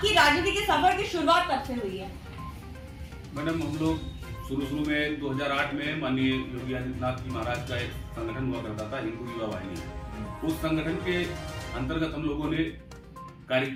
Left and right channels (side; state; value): both; identical; correlation 1.00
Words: राजनीति के सफर की शुरुआत कब से हुई है? मैडम, हम लोग शुरू में 2008 में माननीय योगी आदित्यनाथ जी महाराज का एक संगठन हुआ करता था, हिंदू युवा वाहिनी। उस संगठन के अंतर्गत हम लोगों ने कार्य